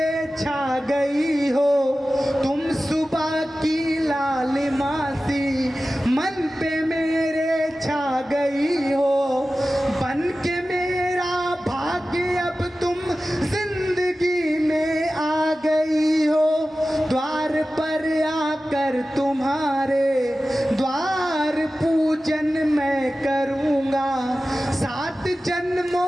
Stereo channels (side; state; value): both; normal; correlation 0.95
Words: छा गई हो, तुम सुबह की लालिमा सी मन पे मेरे छा गई हो, बन के मेरा भाग्य अब तुम जिंदगी में आ गई हो, द्वार पर आकर तुम्हारे द्वार पूजन मैं करूँगा, 7